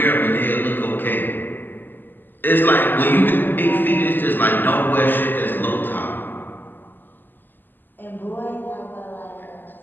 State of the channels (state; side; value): late; right; 0.091 ms